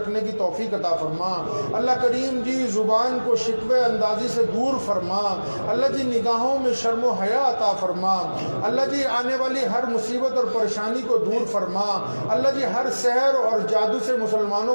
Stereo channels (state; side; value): inverted; both; correlation -1.00